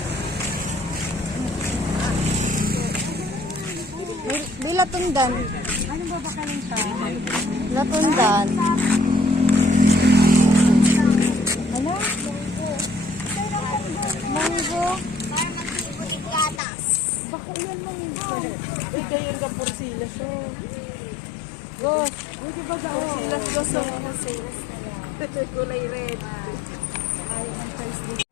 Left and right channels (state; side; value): drops out; right; at 16.6 s